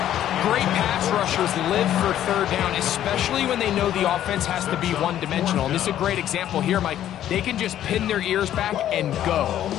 Great pass rushers live for 3rd down, especially when they know the offense has to be one-dimensional. And this is a great example here, Mike. They can just pin their ears back and go.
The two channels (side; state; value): right; quieter; 11.6 dB